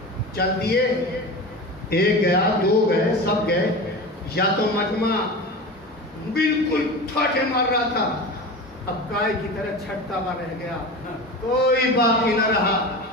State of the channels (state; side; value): normal; both; correlation 0.29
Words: چل دیے. ایک گیا، دو گئے، سب گئے. یا تو مجمع بالکل ٹھاٹھے مار رہا تھا، اب گائے کی طرح چھٹتا ہوا رہ گیا، کوئی باقی نہ رہا.